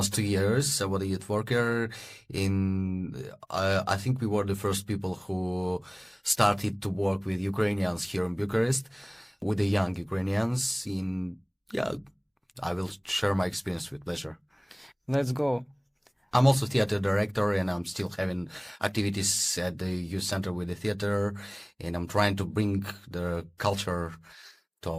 2 years. I was a youth worker. I think we were the first people who started to work with Ukrainians here in Bucharest, with the young Ukrainians. I will share my experience with pleasure. Let's go. I'm also theater director, and I'm still having activities at the youth center with the theater, and I'm trying to bring the culture to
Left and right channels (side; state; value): both; identical; correlation 1.00